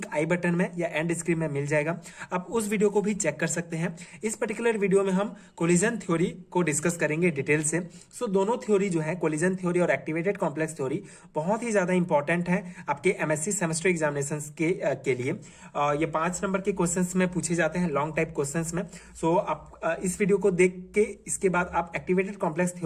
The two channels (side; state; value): both; identical; correlation 1.00